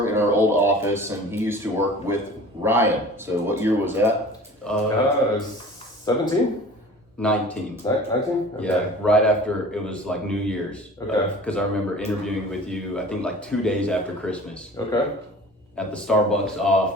in our old office, and he used to work with Ryan. So what year was that? 17? 19. 19? Okay. Yeah, right after it was like New Year's. Okay. Because I remember interviewing with you, I think like 2 days after Christmas Okay. at the Starbucks off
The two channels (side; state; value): both; normal; correlation 0.42